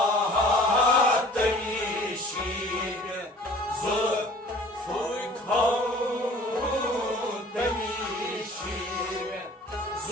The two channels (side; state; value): both; normal; correlation 0.48